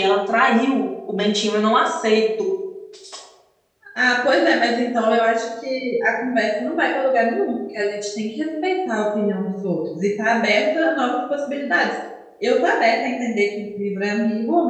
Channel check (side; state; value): both; identical; correlation 1.00